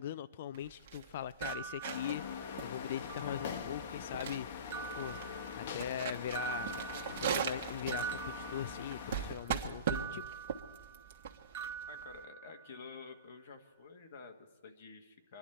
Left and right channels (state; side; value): inverted; both; correlation -0.34